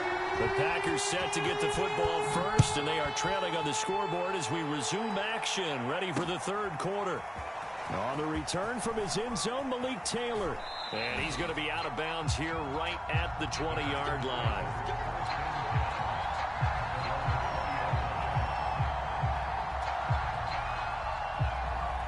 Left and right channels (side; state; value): both; identical; correlation 1.00